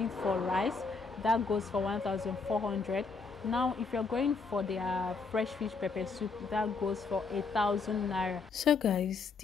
for rice, that goes for 1,400. Now if you're going for their fresh fish pepper soup, that goes for 1,000 naira. So guys,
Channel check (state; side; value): quieter; right; 4.6 dB